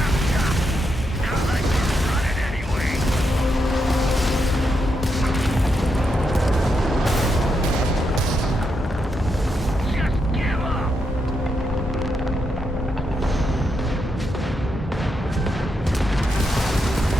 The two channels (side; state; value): both; normal; correlation 0.82